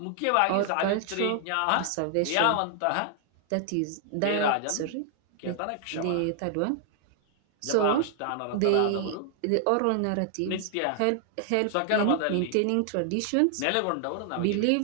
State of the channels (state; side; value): different; both; correlation 0.00